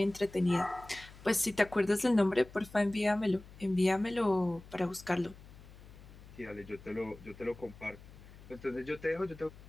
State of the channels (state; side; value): noise; left; hum, 19 dB below the sound